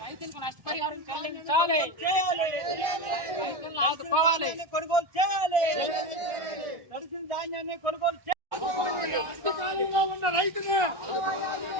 రైతులకు నష్టపరిహారం చెల్లించాలి. రైతులను ఆదుకోవాలి. కొనుగోలు చేయాలి. తడిసిన ధాన్యాన్ని కొనుగోలు చేయాలి. కష్టకాలంలో ఉన్న రైతుని,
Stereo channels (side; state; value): left; late; 1.4 ms